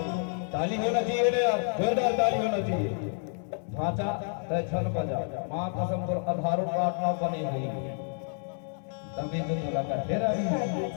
ताली होना चाहिए ना यार, जोरदार ताली होना चाहिए। ढांचा तय छल बजा माँ कसम पर आधारों प्रार्थना बनी हुई तभी तो तुला का तेरा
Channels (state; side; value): silent; right; 57 dB below the other